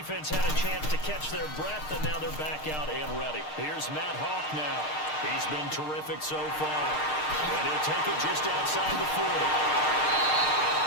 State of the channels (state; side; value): late; right; 6.6 ms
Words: had a chance to catch their breath, and now they're back out and ready. Here's Matt Hawk now. He's been terrific so far. And he'll take it just outside the 40.